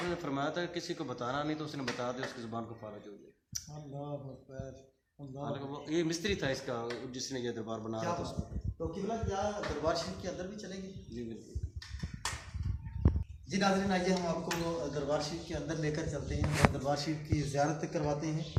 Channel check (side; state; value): both; identical; correlation 1.00